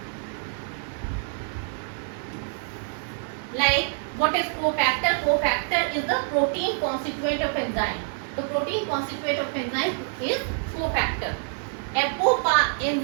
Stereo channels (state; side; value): silent; left; 61 dB below the other